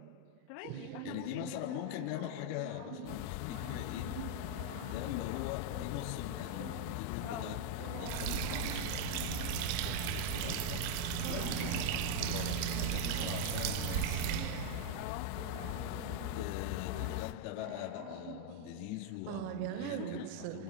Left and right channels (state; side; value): different; both; correlation 0.00